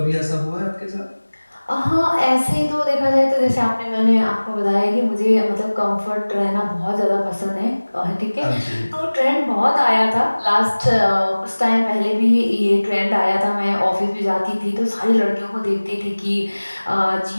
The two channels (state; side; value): inverted; both; correlation -1.00